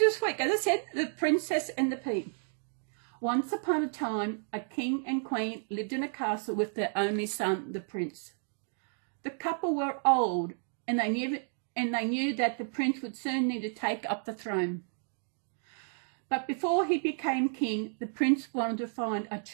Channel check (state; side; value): silent; left; 57 dB below the other